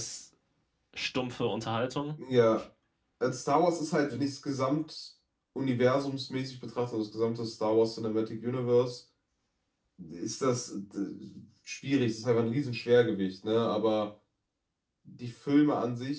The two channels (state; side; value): identical; both; correlation 1.00